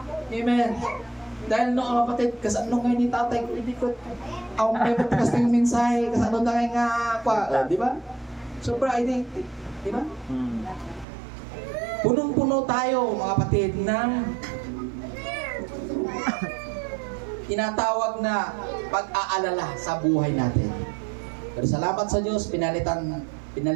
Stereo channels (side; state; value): left; drops out; at 11.1 s